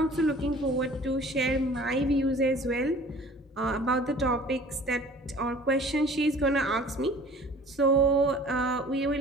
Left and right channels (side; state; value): both; normal; correlation 0.48